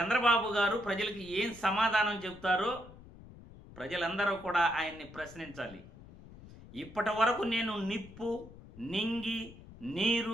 గారు ప్రజలకు ఏం సమాధానం చెప్తారో ప్రజలందరూ కూడా ఆయన్ని ప్రశ్నించాలి. ఇప్పటి వరకు నేను నిప్పు, నింగి,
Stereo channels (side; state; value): left; noise; rumble, 18 dB below the sound